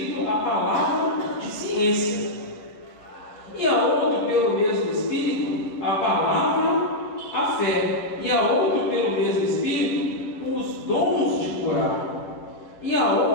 a palavra de ciência, e a outro pelo mesmo Espírito a palavra, a fé, e a outro pelo mesmo Espírito os dons de curar, e a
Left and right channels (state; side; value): late; right; 9.9 ms